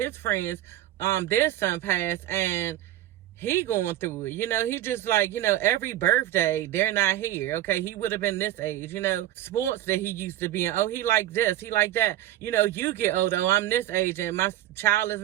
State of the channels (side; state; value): left; quieter; 13.7 dB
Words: friends, their son passed, and he going through it. He just like, every birthday, they're not here. Okay, he would have been this age, sports that he used to be in. Oh, he like this, he like that. You get older, oh, I'm this age and my child is